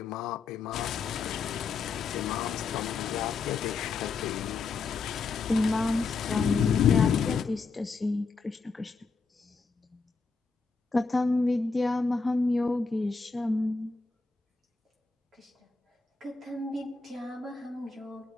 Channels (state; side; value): quieter; right; 4.6 dB